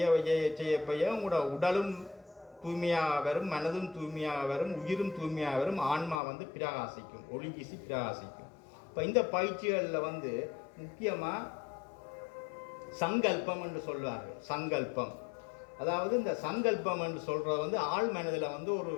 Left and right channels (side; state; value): right; drops out; at 6.2 s